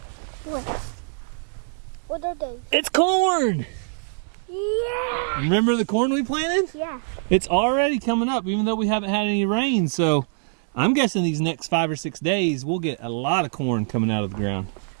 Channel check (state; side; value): silent; left; digital silence